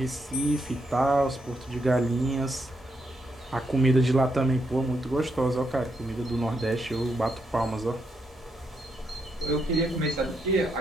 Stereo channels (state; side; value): normal; both; correlation 0.80